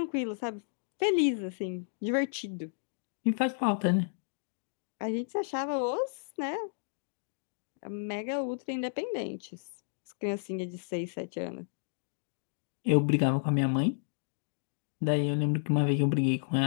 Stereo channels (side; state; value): right; silent; digital silence